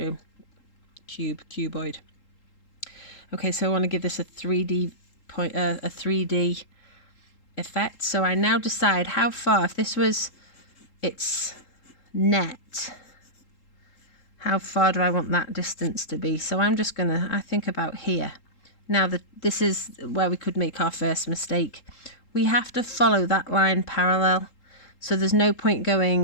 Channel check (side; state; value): right; late; 3.8 ms